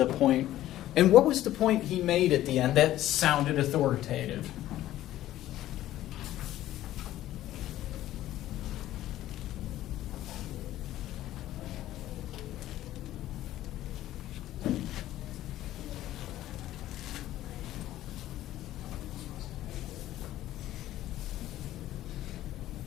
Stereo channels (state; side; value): quieter; right; 14.0 dB